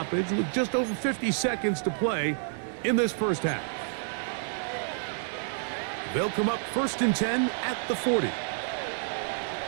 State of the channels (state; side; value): silent; left; digital silence